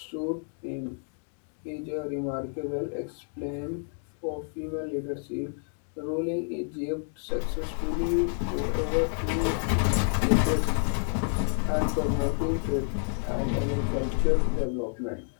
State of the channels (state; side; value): silent; right; 58 dB below the other